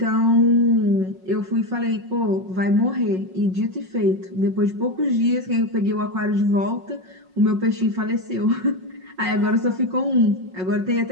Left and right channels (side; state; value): left; late; 5.5 ms